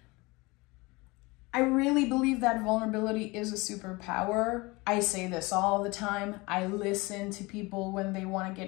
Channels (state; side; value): quieter; right; 24.1 dB